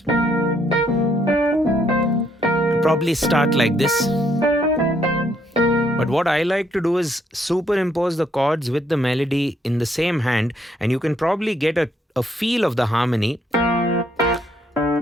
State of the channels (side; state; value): both; normal; correlation 0.71